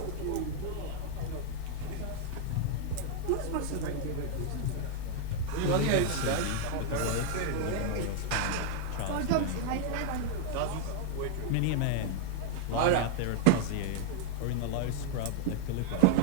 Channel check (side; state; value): both; different; correlation 0.00